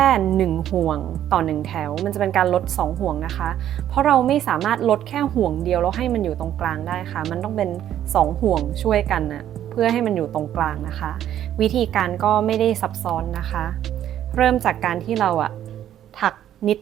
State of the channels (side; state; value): left; quieter; 11.2 dB